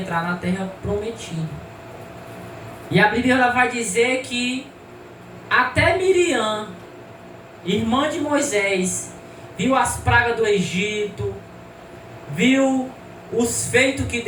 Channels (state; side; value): identical; both; correlation 1.00